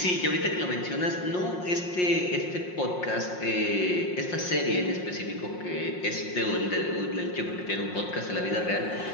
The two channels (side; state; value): right; late; 5.6 ms